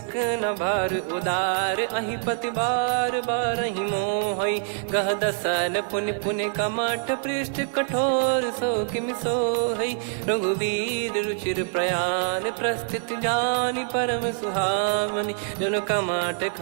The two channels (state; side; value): silent; left; 62 dB below the other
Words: भार उदार अहि पति बार बारहि मोहै। गह दसन पुनि पुनि कमठ पृष्ठ कठोर सो किम सोहै। रघुवीर रुचिर प्रयाण प्रस्थित जानि परम सुहावनी। जन कमाट